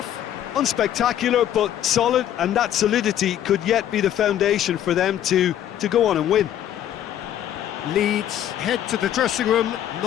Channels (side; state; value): right; quieter; 11.1 dB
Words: Unspectacular, but solid, and that solidity could yet be the foundation for them to go on and win. Leeds head to the dressing room,